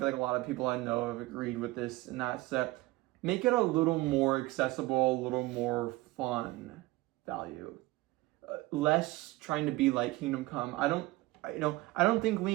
like a lot of people I know have agreed with this, and that's that make it a little more accessible, a little more fun value. Less trying to be like Kingdom Come. I don't think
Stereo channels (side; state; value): left; quieter; 20.1 dB